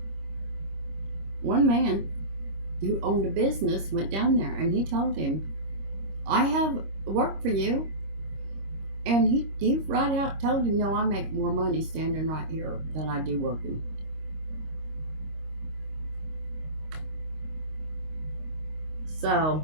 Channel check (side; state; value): left; late; 25 ms